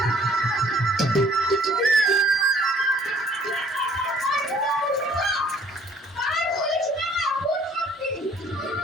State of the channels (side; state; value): both; normal; correlation 0.58